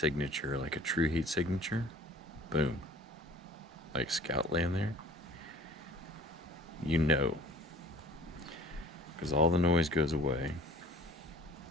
like a true heat signature, boom. Like Scout land there. You know. Because all the noise goes away.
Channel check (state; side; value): normal; both; correlation 0.49